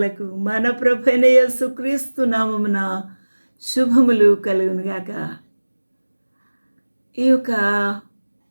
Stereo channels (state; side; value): inverted; both; correlation -1.00